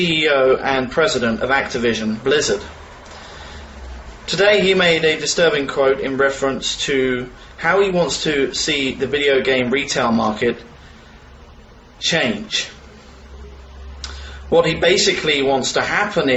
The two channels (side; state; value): both; identical; correlation 1.00